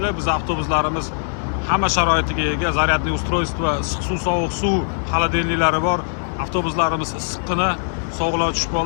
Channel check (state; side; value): silent; right; digital silence